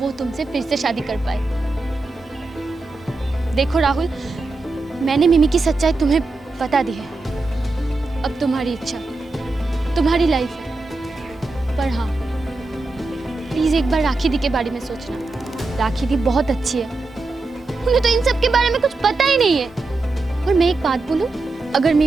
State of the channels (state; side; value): quieter; left; 3.3 dB